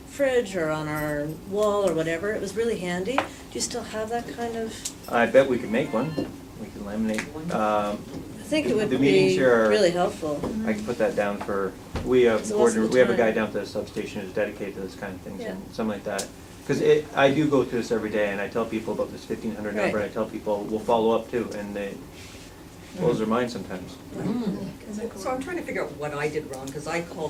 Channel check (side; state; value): both; identical; correlation 1.00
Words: fridge or on our wall or whatever. It was really handy. Do you still have that kind of? I bet we could make one. We could laminate. I think it would The meetings be here are- really helpful. I can put that down for, we have So what's the a guy time? down at the substation who's dedicated to this kind of things Yeah. and something like that. Because I do go through this every day and I tell people about this 1500 number, Right. and I tell people, we'll follow up too, and they blows their mind sometimes. So I'm trying to figure out what I did wrong, because I